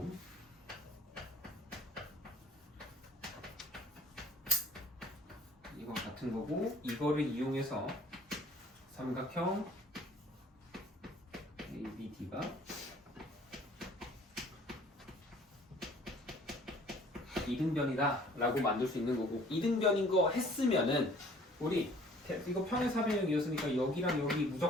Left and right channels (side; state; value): both; normal; correlation 0.54